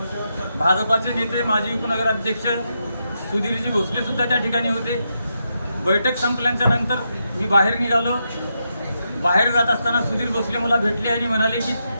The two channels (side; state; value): both; inverted; correlation -0.84